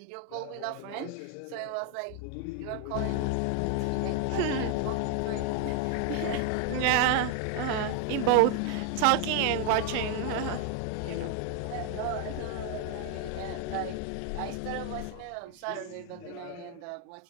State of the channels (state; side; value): different; both; correlation 0.00